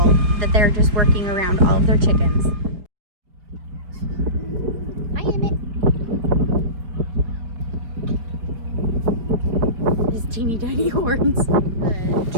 that they're just working around all of their chickens. Hi, Emmett. His teeny tiny horns. The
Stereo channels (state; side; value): late; left; 4.5 ms